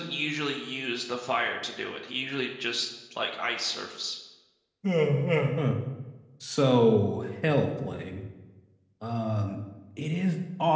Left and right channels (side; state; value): both; identical; correlation 1.00